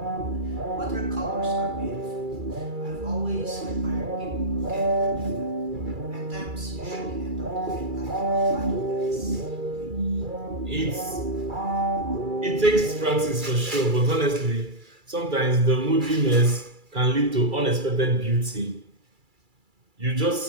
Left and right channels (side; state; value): left; late; 2.3 ms